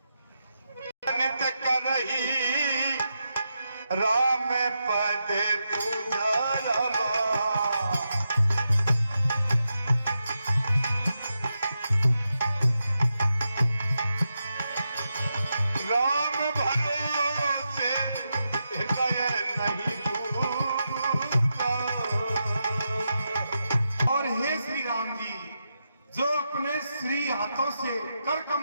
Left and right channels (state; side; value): inverted; both; correlation -0.87